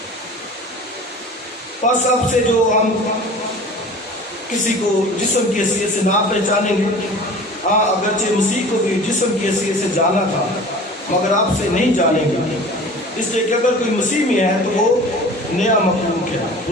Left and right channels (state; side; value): normal; both; correlation 0.41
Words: پس اب سے جو ہم کسی کو جسم کی حیثیت سے نہ پہچانیں گے، ہاں اگرچہ مسیح کو بھی جسم کی حیثیت سے جانا تھا مگر آپ سے نہیں جانیں گے، اس لیے کہ اگر کوئی مسیح میں ہے تو وہ نیا مخلوق ہے،